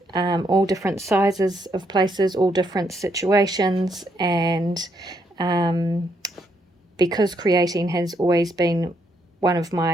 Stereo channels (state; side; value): normal; both; correlation 0.75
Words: all different sizes of places, all different situations, and because creating has always been one of